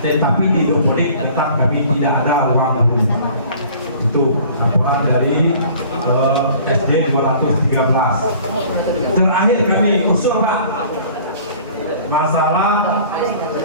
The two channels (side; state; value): both; inverted; correlation -0.50